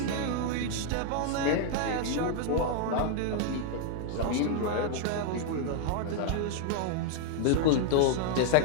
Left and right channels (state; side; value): different; both; correlation 0.00